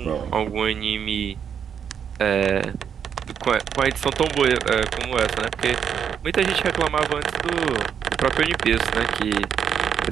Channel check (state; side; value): quieter; left; 7.8 dB